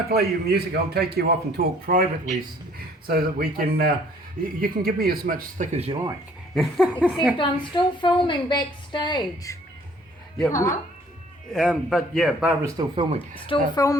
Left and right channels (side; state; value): both; normal; correlation 0.58